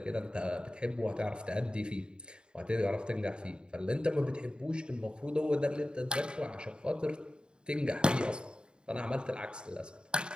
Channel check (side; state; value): left; late; 0.050 ms